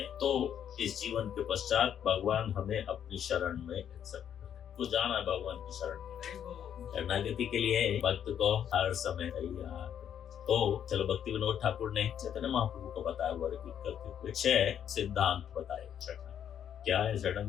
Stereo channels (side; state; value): right; quieter; 9.2 dB